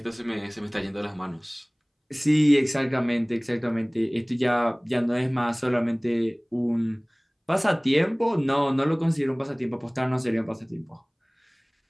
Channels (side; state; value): both; identical; correlation 1.00